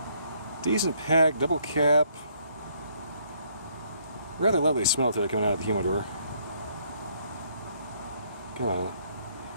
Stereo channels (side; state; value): both; inverted; correlation -0.68